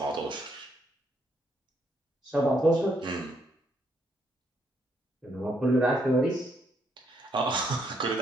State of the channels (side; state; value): both; normal; correlation 0.74